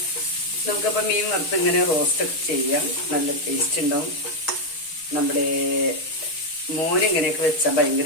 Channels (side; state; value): right; late; 6.4 ms